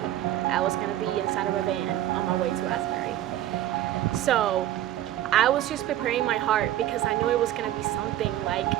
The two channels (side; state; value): left; quieter; 13.2 dB